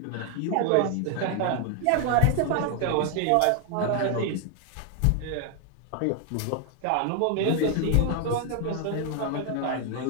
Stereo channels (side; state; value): both; different; correlation 0.00